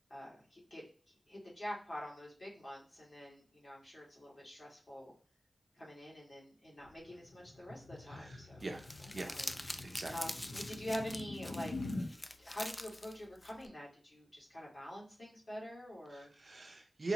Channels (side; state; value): both; normal; correlation 0.95